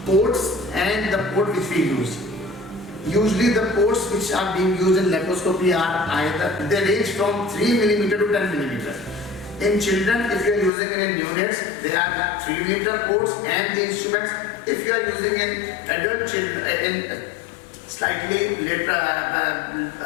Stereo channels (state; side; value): drops out; right; at 10.7 s